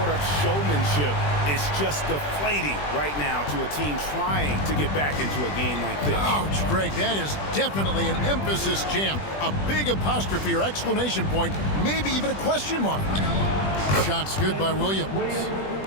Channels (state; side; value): late; right; 20 ms